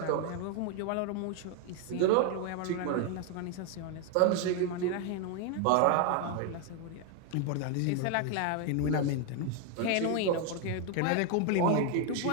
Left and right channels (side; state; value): both; different; correlation 0.01